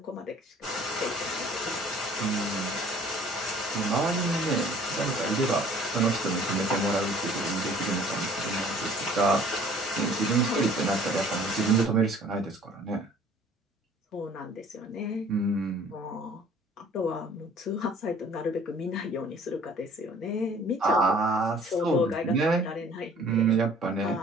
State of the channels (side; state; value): both; normal; correlation 0.53